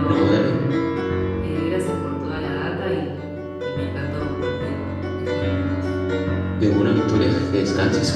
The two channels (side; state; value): both; identical; correlation 1.00